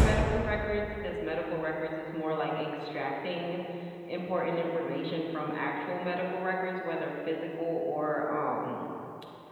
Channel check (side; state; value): both; identical; correlation 1.00